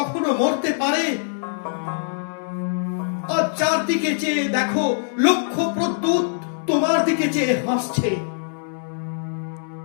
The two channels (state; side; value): silent; right; digital silence